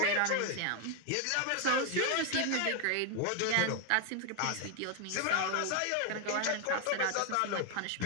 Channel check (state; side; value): different; both; correlation 0.01